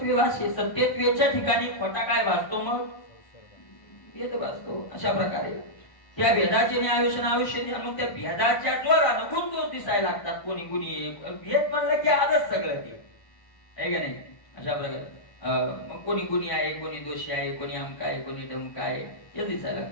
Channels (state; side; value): late; right; 1.1 ms